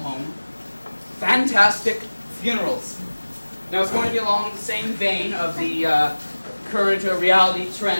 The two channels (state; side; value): inverted; both; correlation -1.00